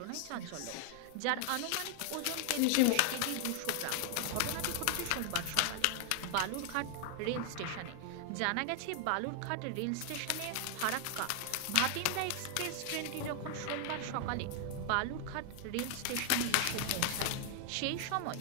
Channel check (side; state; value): both; different; correlation 0.00